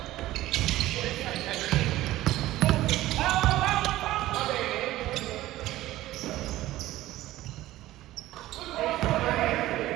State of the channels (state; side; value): quieter; left; 15.9 dB